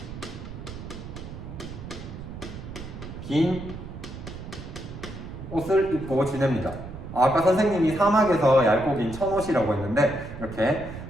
긴 옷을 입고 지냅니다. 아까 선생님이 사막에서 얇고 긴 천옷이라고 했는데 이렇게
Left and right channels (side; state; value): right; noise; rumble, 11 dB below the sound